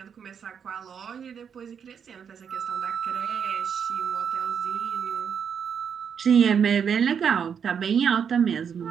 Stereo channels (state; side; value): quieter; left; 7.3 dB